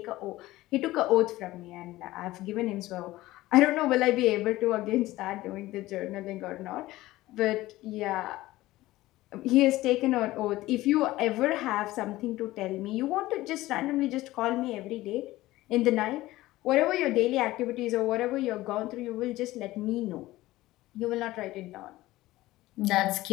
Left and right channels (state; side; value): quieter; right; 17.3 dB